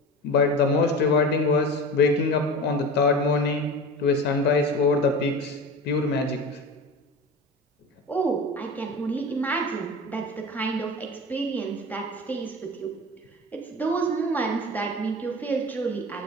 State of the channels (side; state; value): both; normal; correlation 0.32